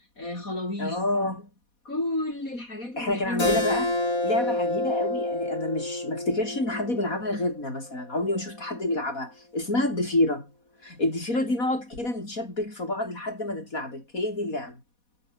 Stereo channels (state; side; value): late; right; 4.2 ms